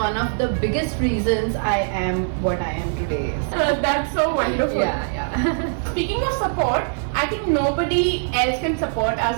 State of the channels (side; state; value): left; silent; digital silence